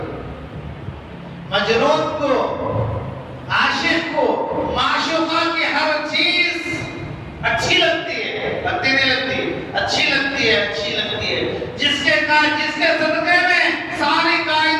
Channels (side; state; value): both; identical; correlation 1.00